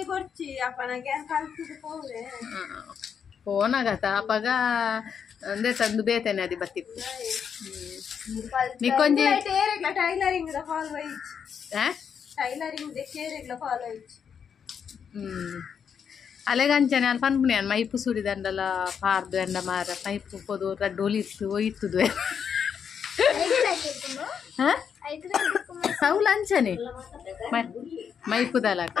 ಫೋನಾಗತ್ತ ಅಪ್ಪಗ ಅಂದೆ ತಂದು ಬೇತೇನೆ ಅದು ಬತ್ತಿತ್ತು ನಿಕ್ಕೊಂಜಿ ಅಲೆಗಂಚನೆ ಅಲ್ಲಿ ಪನ್ಪುನಿ ಅನ್ ಮೈಪು ಸುರಿದಂಡಲ ಪಾರ್ದು ಎಂಡ ಮಾರ ಮೈಪು ಪೋದು ರಡ್ಡು ಇತ್ತು ಒಯ್ತುದು ಸೌಲ್ ಅಂಚನೆ ಮೈಪುದಲ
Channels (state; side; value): quieter; right; 7.3 dB